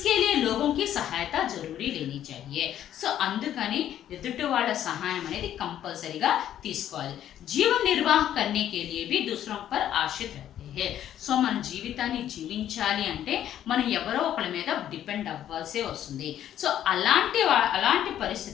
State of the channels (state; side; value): quieter; right; 11.1 dB